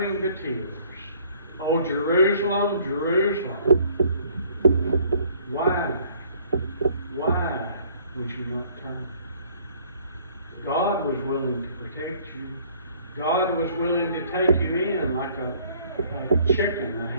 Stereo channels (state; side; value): inverted; both; correlation -0.58